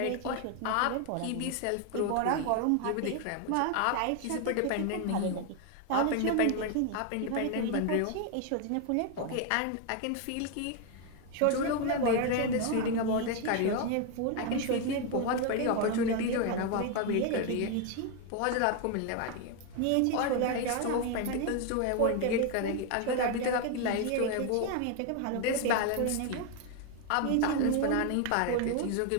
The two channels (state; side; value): different; both; correlation 0.01